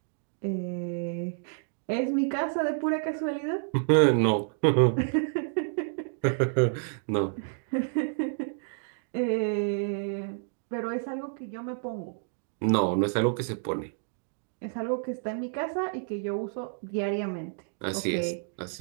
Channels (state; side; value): silent; left; digital silence